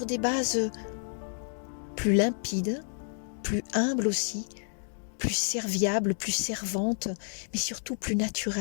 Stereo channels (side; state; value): right; silent; digital silence